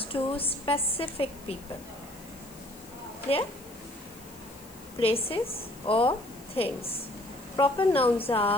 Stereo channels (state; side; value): noise; left; hiss, 21 dB below the sound